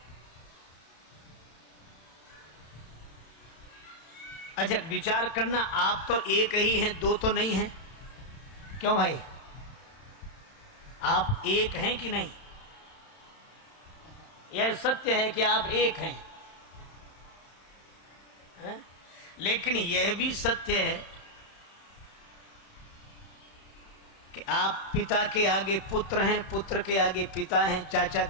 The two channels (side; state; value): right; late; 31 ms